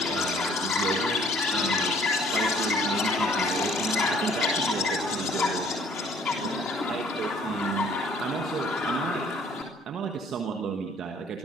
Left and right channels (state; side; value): normal; both; correlation 0.58